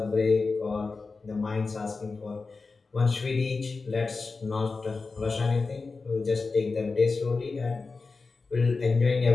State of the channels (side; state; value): right; quieter; 4.1 dB